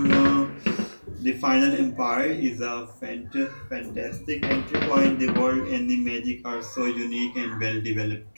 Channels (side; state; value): both; inverted; correlation -1.00